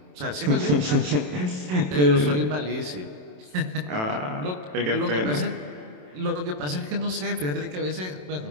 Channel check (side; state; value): left; late; 27 ms